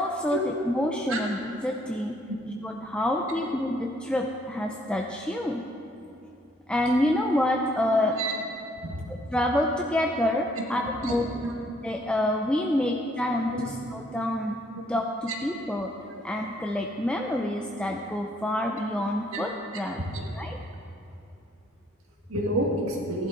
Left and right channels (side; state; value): both; normal; correlation 0.66